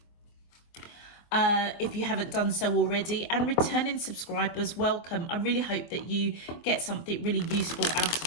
if you haven't done so already. And returning subscribers, welcome. I really hope that you get something really useful out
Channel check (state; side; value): late; right; 24 ms